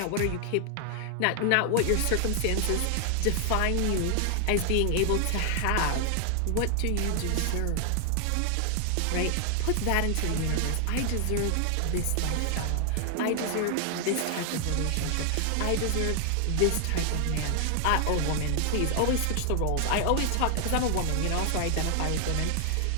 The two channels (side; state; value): both; different; correlation 0.00